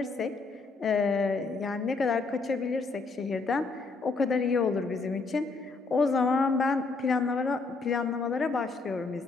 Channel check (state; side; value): quieter; right; 4.1 dB